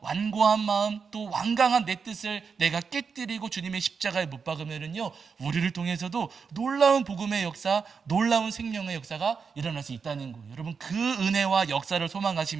완고한 마음, 또 완강한 내 뜻을 내가 깨뜨리고 주님의 십자가에 못 박으면은요 우리를 통해서도 놀라운 복음의 역사, 놀라운 생명의 역사가 일어날 수 있다는 거예요. 여러분 그 은혜와 역사를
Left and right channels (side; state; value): left; quieter; 5.7 dB